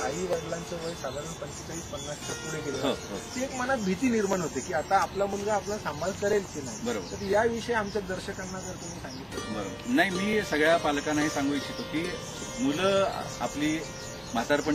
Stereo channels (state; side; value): identical; both; correlation 1.00